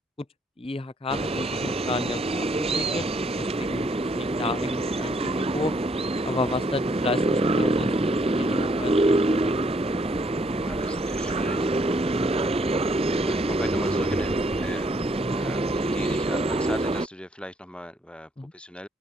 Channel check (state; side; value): normal; both; correlation 0.68